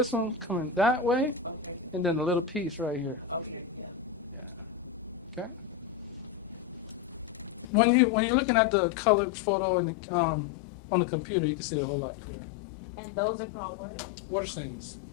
one coming that way, and then a little piece right here. Yeah. Okay. When you're looking at the colored photo in the, on the computer, you can see it a whole lot clearer. And those are called what? Water stains.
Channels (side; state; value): right; drops out; at 7.7 s